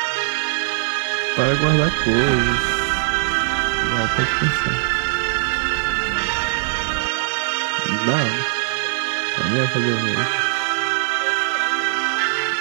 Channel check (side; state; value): left; silent; 57 dB below the other